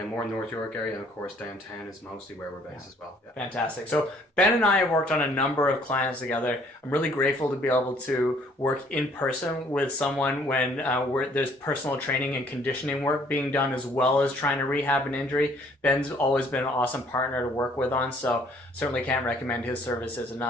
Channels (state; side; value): normal; both; correlation 0.61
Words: more North York area, and of course downtown is mostly where we're based as well. Yeah. Fantastic. So Ben and I have worked on a number of clients together. I'm really grateful to be able to work in person with someone when there's personal training and conditioning work being done as well as trying to rehab an injury. Ben's always been an awesome partner to work with on, so certainly can't recommend his services